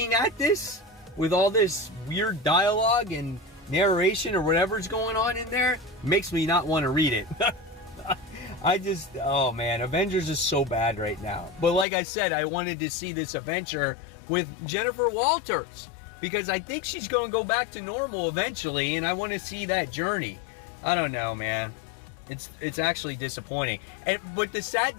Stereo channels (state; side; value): drops out; right; at 11.9 s